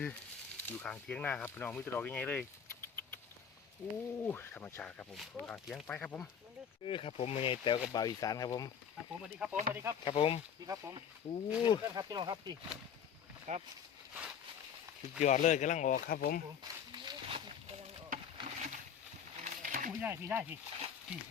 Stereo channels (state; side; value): quieter; right; 7.8 dB